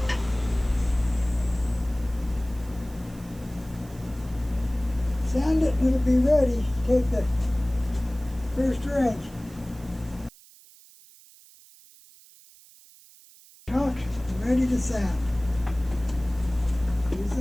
Sand it and it'll be ready. Take the first ring. Chalk and ready to sand.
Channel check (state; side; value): noise; right; hiss, 24 dB below the sound